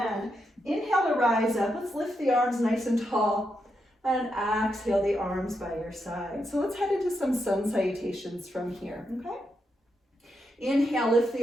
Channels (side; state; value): both; normal; correlation 0.83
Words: Inhale to rise up. Let's lift the arms nice and tall. And exhale the arms by your side. So let's head into some sun salutations from here, okay? Inhale, lift